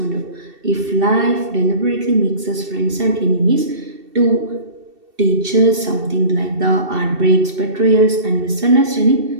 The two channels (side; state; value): left; late; 2.7 ms